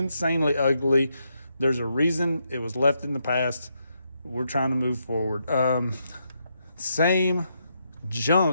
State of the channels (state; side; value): inverted; both; correlation -0.80